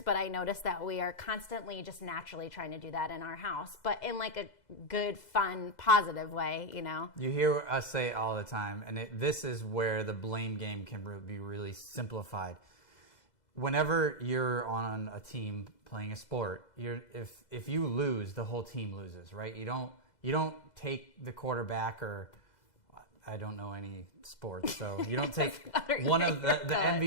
but I noticed that we are constantly just naturally trying to do that in our house, but in like a good, fun, positive way, you know? You hear us say it all the time, and this is where the blame game can be really simplified. Whenever you're on a team playing a sport, if you lose, the whole team loses, right? You don't take the quarterback, or I don't know any sports, so you don't take one of the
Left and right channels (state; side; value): late; right; 2.0 ms